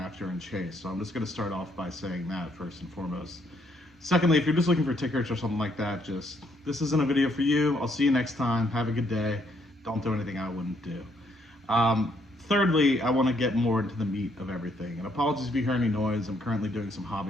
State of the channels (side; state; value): both; normal; correlation 0.71